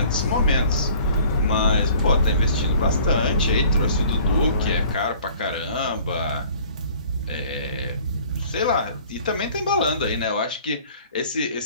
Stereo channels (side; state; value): both; inverted; correlation -0.52